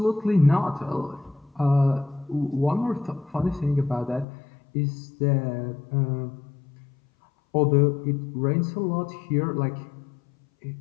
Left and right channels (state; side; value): drops out; right; at 4.2 s